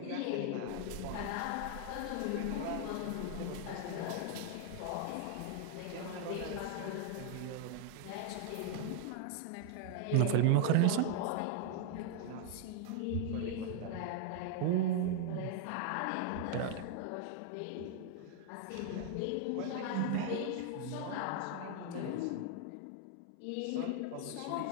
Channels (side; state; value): both; different; correlation 0.00